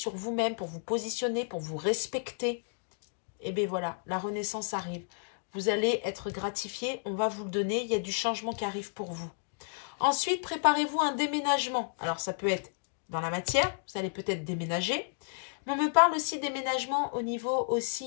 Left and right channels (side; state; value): right; silent; digital silence